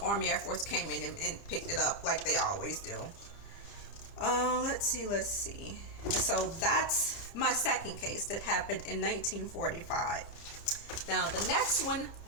Army Air Force came in and picked it up like they always do. Let's see. So that's my second case that happened in 1945. Now the next one,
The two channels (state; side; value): late; right; 30 ms